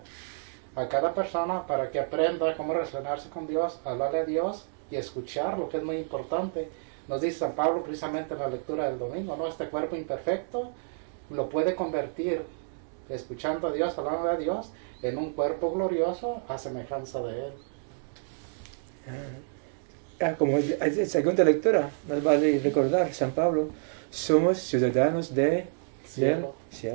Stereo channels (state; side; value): silent; left; digital silence